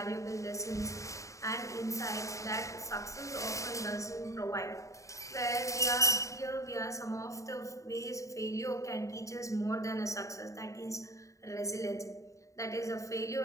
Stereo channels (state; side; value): late; right; 0.15 ms